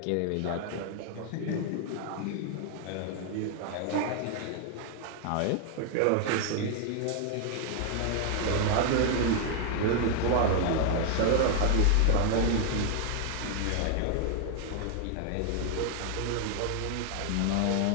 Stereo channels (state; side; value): different; both; correlation 0.00